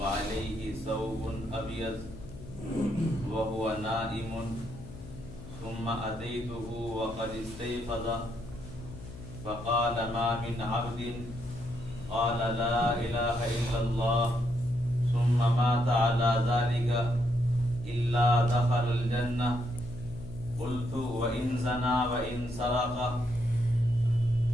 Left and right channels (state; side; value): noise; left; hum, 14 dB below the sound